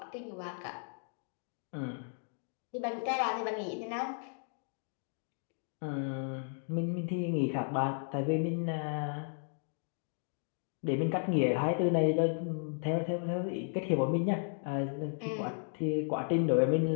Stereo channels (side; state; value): right; silent; 55 dB below the other